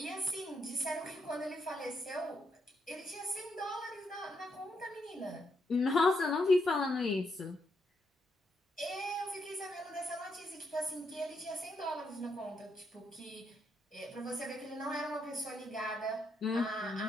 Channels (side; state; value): both; normal; correlation 0.79